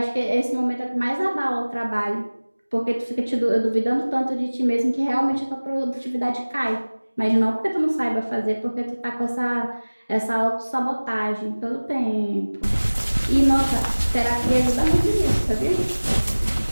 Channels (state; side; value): inverted; both; correlation -1.00